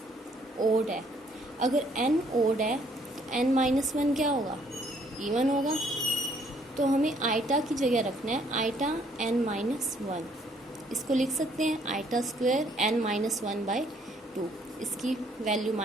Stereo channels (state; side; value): normal; both; correlation 0.65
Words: ओड है, अगर n ओड है तो n माइनस वन क्या होगा इवन होगा, तो हमें आइटा की जगह रखना है आइटा n माइनस वन, इसको लिख सकते हैं iota square n minus one by two, इसकी वैल्यू